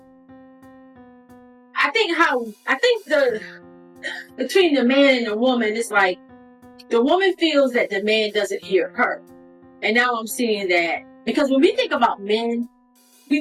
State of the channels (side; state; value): both; identical; correlation 1.00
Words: I think the between the man and the woman, it's like the woman feels that the man doesn't hear her, and now I'm seeing that because when we think about men,